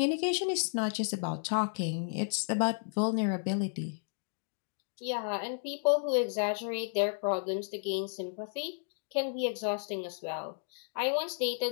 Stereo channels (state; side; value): silent; right; digital silence